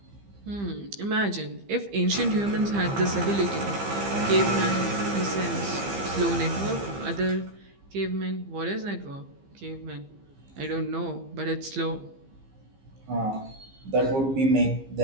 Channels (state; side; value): late; left; 15 ms